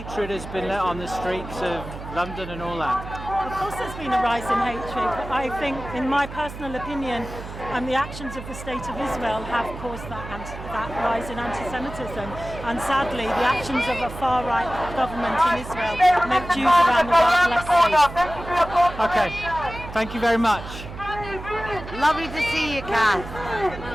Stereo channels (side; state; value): right; noise; hum, 11 dB below the sound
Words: has been let on the streets of London and all that? Of course there's been a rise in hatred, but I think, in my personal opinion, the actions of the State of Israel have caused that rise in anti-Semitism. And sadly, the actions of a far-right government in Israel make Jews around the world less safe. Okay, thank you very much. Lovely to see you, Kath.